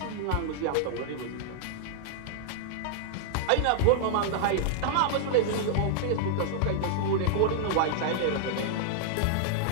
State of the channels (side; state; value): both; different; correlation -0.01